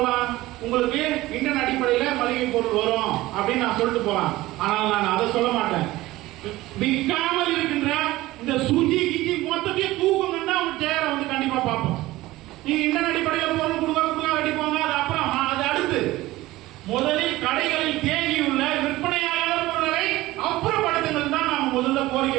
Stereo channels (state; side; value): quieter; left; 17.8 dB